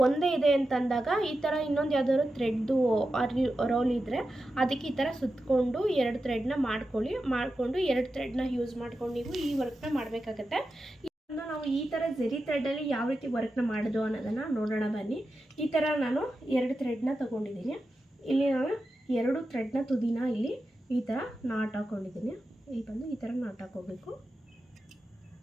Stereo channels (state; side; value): normal; both; correlation 0.91